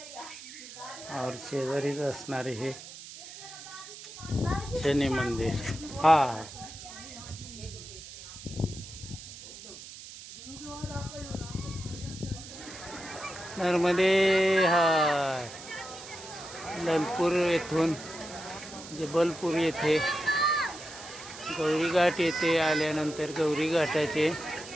और शेजारीच असणारे हे शनी मंदिर. हा नर्मदे हार. ललपूर येथून जबलपूर येथे गौरी घाट येथे आल्यानंतर गौरी घाटाचे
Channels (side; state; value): right; noise; hiss, 14 dB below the sound